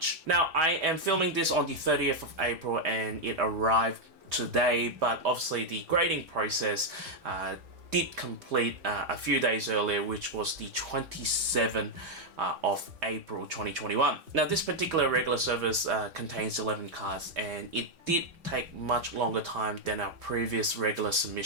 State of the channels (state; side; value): late; left; 3.3 ms